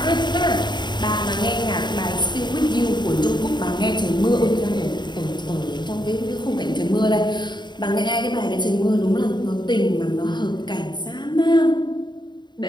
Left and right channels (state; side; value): late; right; 0.21 ms